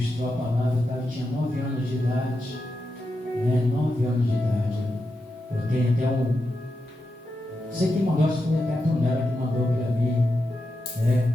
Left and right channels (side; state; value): both; normal; correlation 0.88